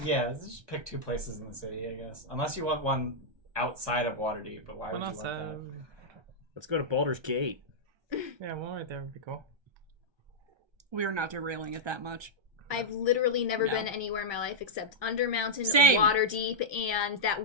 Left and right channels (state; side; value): late; left; 1.3 ms